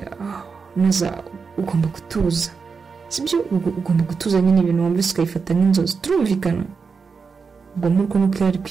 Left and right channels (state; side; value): quieter; left; 5.2 dB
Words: Naza ugomba gutuza, sibyo? Ugomba gutuza nyine ibintu wumvise ukayifata nk'inzozi, turumvikana? Ubwo nuko yari